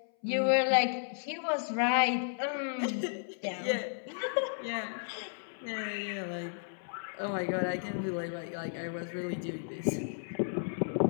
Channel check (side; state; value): right; silent; 55 dB below the other